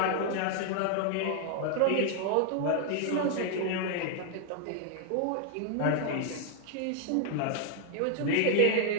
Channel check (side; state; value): both; different; correlation 0.00